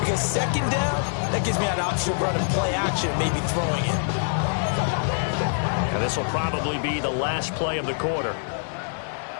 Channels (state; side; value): silent; right; digital silence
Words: second down, that gives me an option of running play action, maybe throwing it. And this will probably be the last play of the quarter.